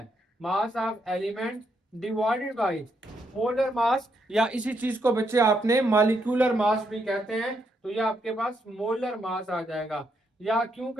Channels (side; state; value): both; normal; correlation 0.77